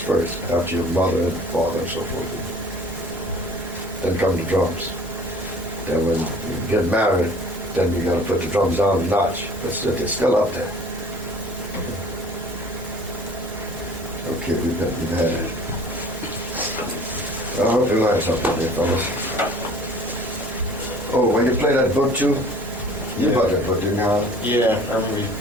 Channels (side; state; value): both; normal; correlation 0.48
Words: after your mother and father and so forth. Then come the drums. Then when you get married, then you gotta put the drums down a notch. But they're still up there. Okay, we've had it. I hope you learned something there, fellas. Oh, when you play that book too, you bought that book, didn't you, Howard? Yeah, I remember you